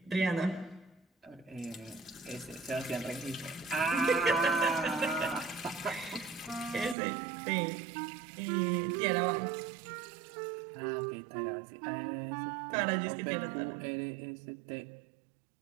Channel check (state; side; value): drops out; left; at 7.0 s